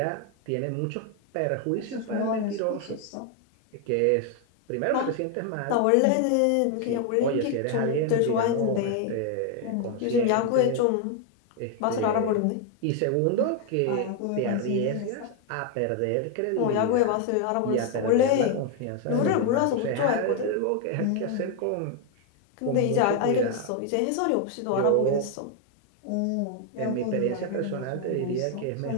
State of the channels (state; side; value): different; both; correlation 0.01